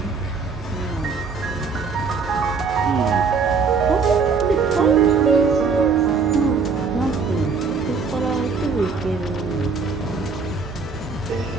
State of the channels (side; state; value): left; quieter; 5.0 dB